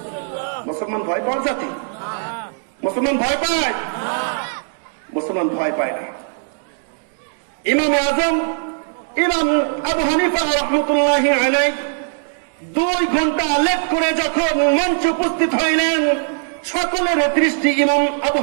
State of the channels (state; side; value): silent; left; digital silence